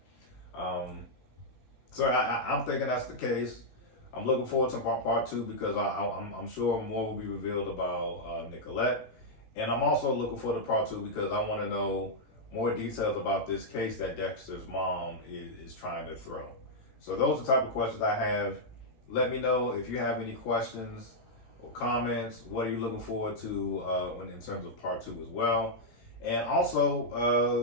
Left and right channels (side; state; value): right; late; 16 ms